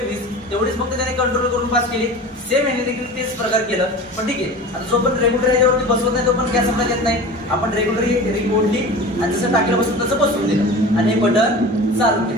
तेवढीच फक्त त्याने कंट्रोल करून पास केली. सेम याने देखील तेच प्रकार केलं. पण ठीक आहे, आता जो पण रेग्युलर ह्याच्यावरती बसवत नाही तो पण गॅस सप्लाय देत नाही. आपण रेग्युलर रिंग ओढली आणि जसं टाकीला बसून तसं बसवून दिलं आणि हे बटन चालू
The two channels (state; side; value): normal; both; correlation 0.35